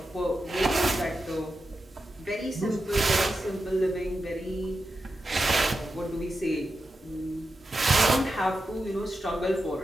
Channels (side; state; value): both; normal; correlation 0.90